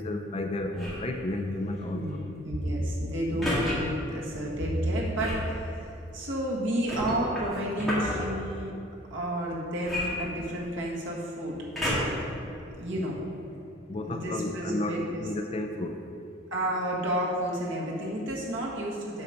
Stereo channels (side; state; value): both; normal; correlation 0.49